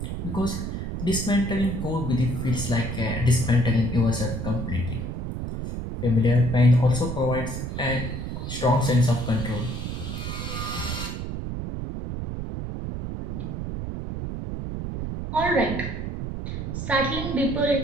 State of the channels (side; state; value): right; noise; rumble, 5 dB below the sound